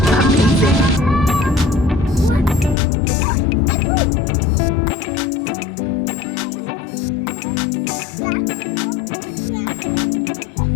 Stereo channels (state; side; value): drops out; right; at 2.8 s